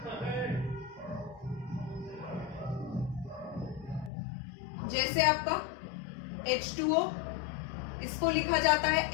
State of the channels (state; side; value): drops out; right; at 4.1 s